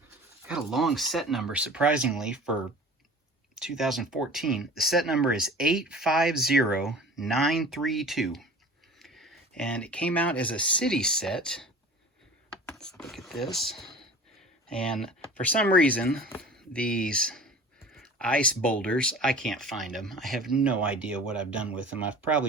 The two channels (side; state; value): both; normal; correlation 0.41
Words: got a long set number, surprisingly, for 2014. The set number is 850932. And it came out as a city set. Let's look at this. And for some reason, these ice boulders, I can't find them. I have no idea what I've done with them. I've